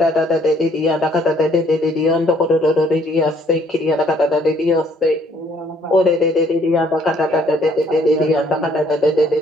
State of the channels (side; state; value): both; normal; correlation 0.63